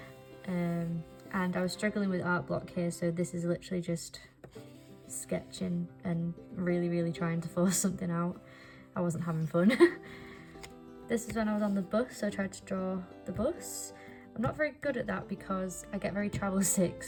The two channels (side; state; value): both; identical; correlation 1.00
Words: And I was struggling with art block here, so this is literally just sketching and really trying to force something out. I wasn't having fun. This is when I was on the bus, so I tried to draw the bus. I'm not very good at that because I get very travel sick,